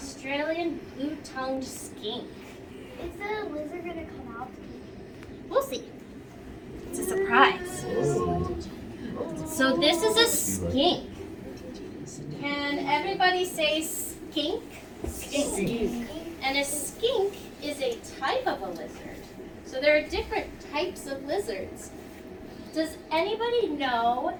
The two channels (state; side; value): identical; both; correlation 1.00